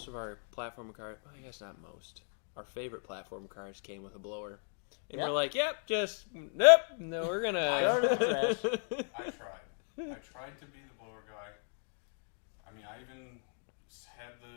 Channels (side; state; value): right; silent; 54 dB below the other